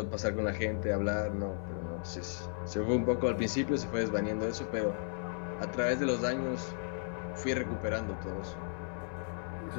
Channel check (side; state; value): right; silent; digital silence